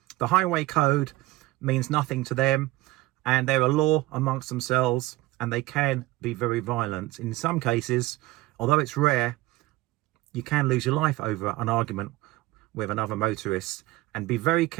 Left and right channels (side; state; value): left; quieter; 18.3 dB